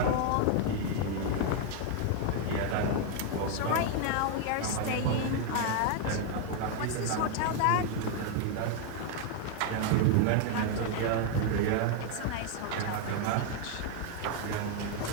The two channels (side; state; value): both; different; correlation 0.00